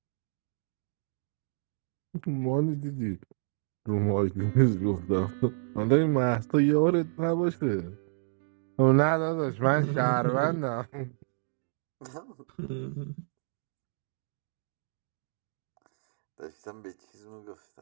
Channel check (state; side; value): silent; left; digital silence